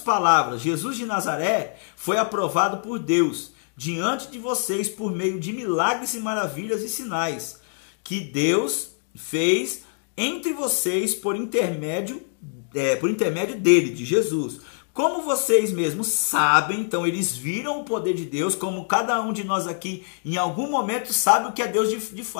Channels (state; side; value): silent; right; digital silence